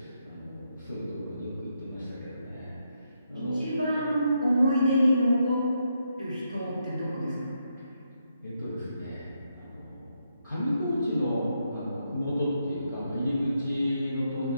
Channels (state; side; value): inverted; both; correlation -0.80